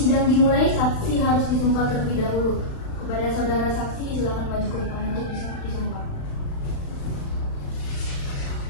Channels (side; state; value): right; late; 35 ms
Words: dimulai, saksi harus disumpah terlebih dahulu. Kepada saudara saksi, silakan maju ke depan untuk disumpah.